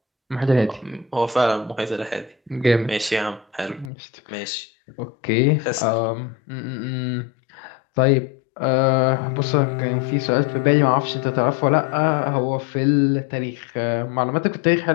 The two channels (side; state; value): right; drops out; at 3.9 s